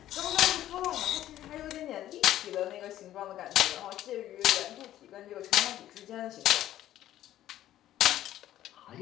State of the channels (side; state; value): right; quieter; 13.0 dB